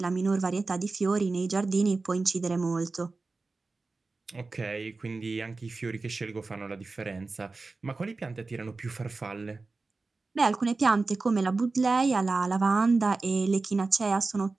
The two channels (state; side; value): quieter; left; 3.7 dB